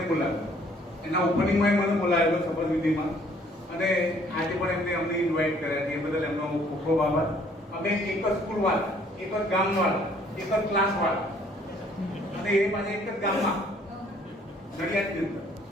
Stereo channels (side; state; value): both; normal; correlation 0.60